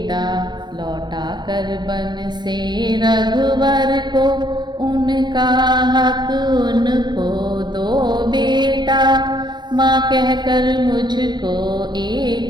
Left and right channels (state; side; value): late; left; 0.21 ms